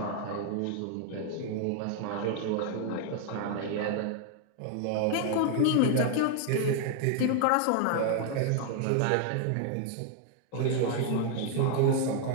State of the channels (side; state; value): both; different; correlation 0.00